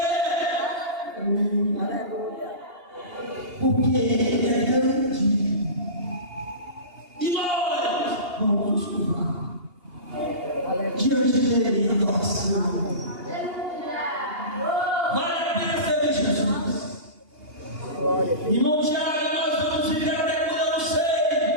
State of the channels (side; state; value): left; late; 2.8 ms